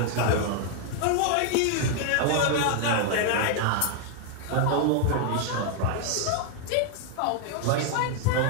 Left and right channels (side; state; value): both; different; correlation 0.00